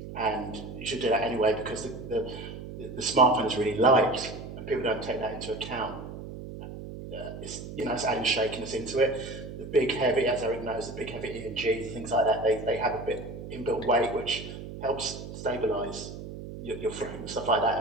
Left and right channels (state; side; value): noise; right; hum, 10 dB below the sound